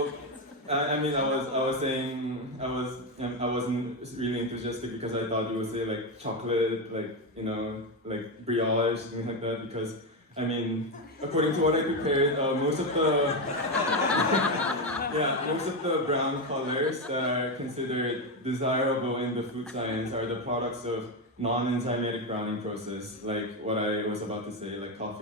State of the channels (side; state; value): both; normal; correlation 0.11